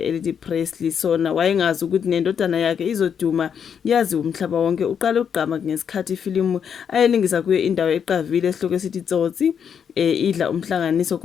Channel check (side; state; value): right; quieter; 7.6 dB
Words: Presley. Sona wayengazi ukuthi nendodana yakhe izoduma yazi umhlaba wonke. Uqale ugqama ngesikhathi ifilimu ayelingisa kuyo indawo eqavile esihloko esithi Tsotsi idla umhlanganiso